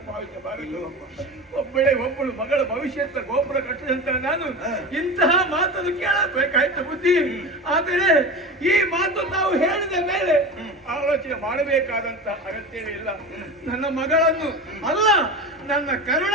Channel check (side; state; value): both; normal; correlation 0.28